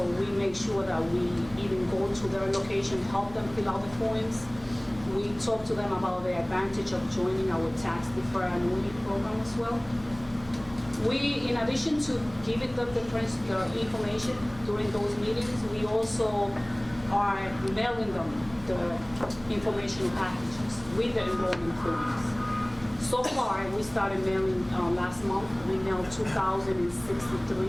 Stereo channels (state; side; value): noise; right; hum, 20 dB below the sound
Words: we make sure that we even go to their location, help them fill out the forms. We talk to them about the advantage of joining our tax deferred annuity program as well. We, in addition to giving them the information during those meetings, we also are mailing them the informational packages with the enrollment forms. So far, we started mailing last month. We mailed